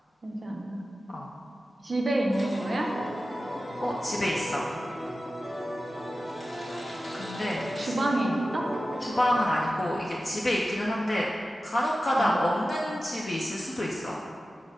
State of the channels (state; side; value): normal; both; correlation 0.94